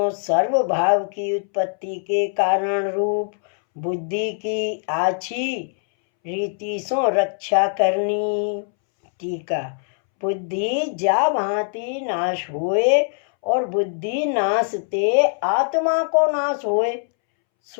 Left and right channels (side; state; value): right; silent; 64 dB below the other